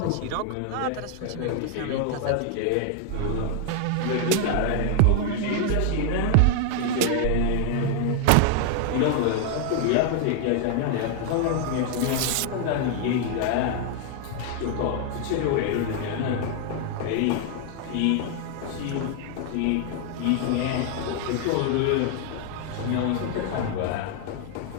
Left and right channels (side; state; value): both; different; correlation 0.00